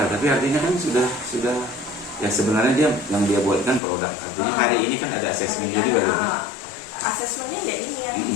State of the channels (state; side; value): drops out; right; at 3.8 s